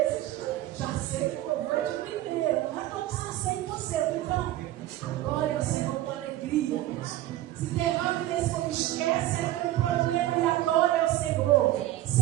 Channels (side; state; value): left; quieter; 14.8 dB